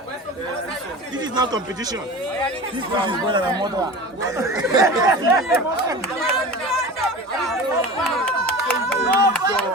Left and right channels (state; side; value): normal; both; correlation 0.34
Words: This is not competition. This is better than mother.